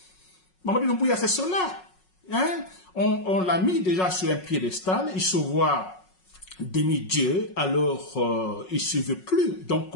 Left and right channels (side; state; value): right; late; 5.4 ms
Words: Mamadou Doumbouya, c'est cela. Hein? On l'a mis déjà sur un piédestal, il se voit demi-dieu, alors il ne se veut plus. Donc